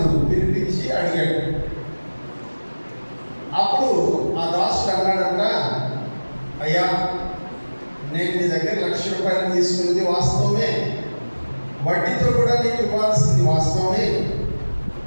పిలిపించి అడిగాడు. అప్పుడు ఆ దాసుడు అన్నాడంట, అయ్యా నేను నీ దగ్గర 1,00,000 రూపాయలు తీసుకున్నది వాస్తవమే, వడ్డీతో కూడా నీకు ఇవ్వాల్సింది వాస్తవమే,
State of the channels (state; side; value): inverted; both; correlation -1.00